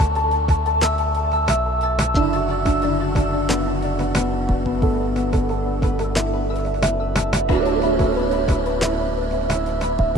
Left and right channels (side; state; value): both; normal; correlation 0.60